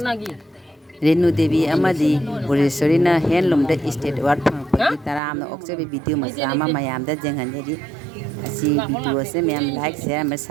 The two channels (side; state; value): left; drops out; at 5.2 s